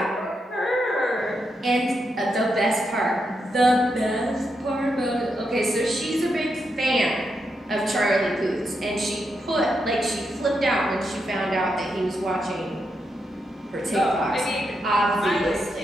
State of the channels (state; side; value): normal; both; correlation 0.83